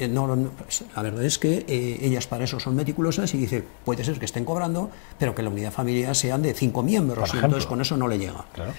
la verdad es que ellas para eso son meticulosas y dice, puede ser que estén cobrando, pero que la unidad familiar sean de 5 miembros, y entonces con eso no le llega. Claro.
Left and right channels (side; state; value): right; silent; 61 dB below the other